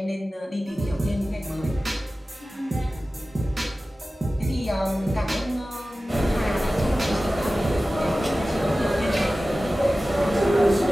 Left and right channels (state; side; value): normal; both; correlation 0.96